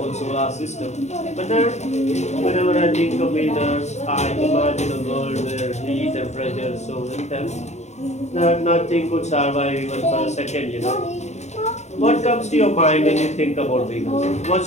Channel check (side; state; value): right; late; 0.33 ms